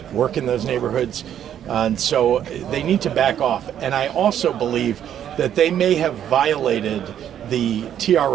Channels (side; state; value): left; quieter; 10.1 dB